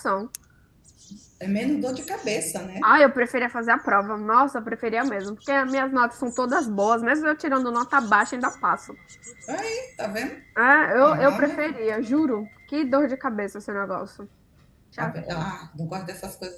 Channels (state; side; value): identical; both; correlation 1.00